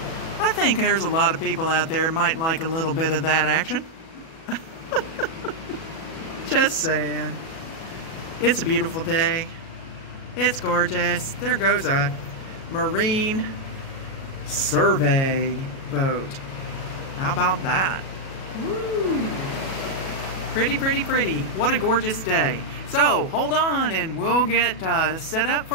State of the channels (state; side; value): late; right; 37 ms